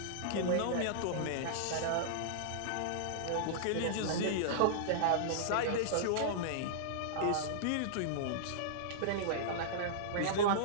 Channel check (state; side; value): different; both; correlation -0.02